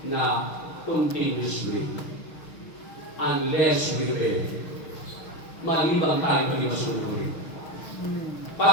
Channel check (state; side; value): late; right; 6.3 ms